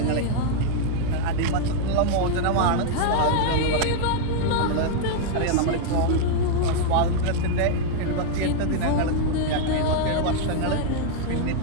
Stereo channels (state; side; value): different; both; correlation 0.00